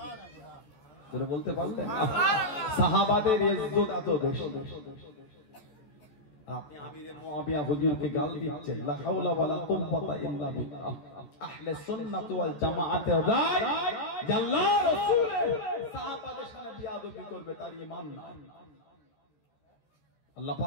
যেটা বলতে পারলেন না? সাহাবাদের ইজ্জত এত বেশি। আপনি আমিরে মুআবিয়া হুজুরকে গাল দিচ্ছেন, লা হাওলা ওয়ালা কুওয়াতা ইল্লা বিল্লাহ। আহলে সুন্নাত ওয়াল জামাআতের রায় যে আল্লাহ রাসূল সাহাবাদের সাথে বিয়াদবি করবে তার ঈমান নাই। আল্লাহ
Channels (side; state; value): right; late; 14 ms